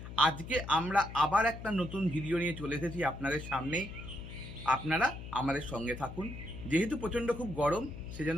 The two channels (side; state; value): left; noise; hum, 11 dB below the sound